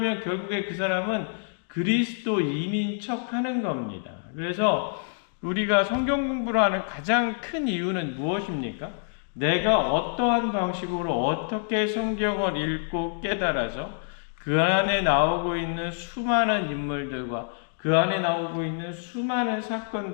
결국에 그 사람은 그리스도인인 척 하는 겁니다. 그래서 우리가 성경 공부를 하는 가장 큰 이유는 무엇입니까? 내가 어떠한 방식으로 어떻게 성경을 읽고 깨달아서 그 안에 나오고 있는 수많은 인물들과 그 안에 나오고 있는 수많은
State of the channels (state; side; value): silent; right; digital silence